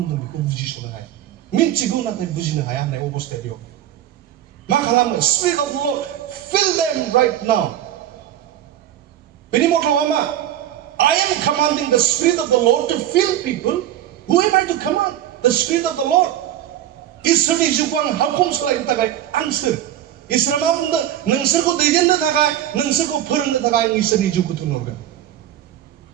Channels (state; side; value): quieter; left; 11.8 dB